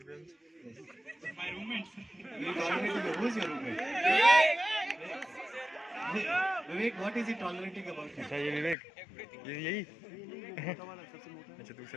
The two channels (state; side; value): drops out; right; at 8.8 s